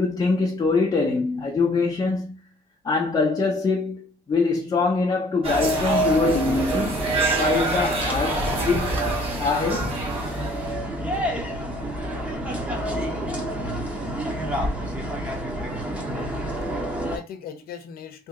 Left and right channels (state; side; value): normal; both; correlation 0.58